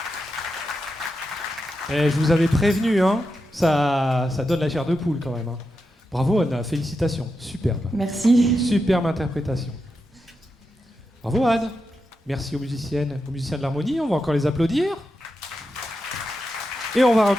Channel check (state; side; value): normal; both; correlation 0.88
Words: Et je vous avais prévenu, hein, ça donne la chair de poule quand même. Hein. Bravo Anna, félicitations, superbe. Merci. Superbe interprétation. Bravo Anne. Merci aux musiciens de l'harmonie, on va encore les applaudir. Et on va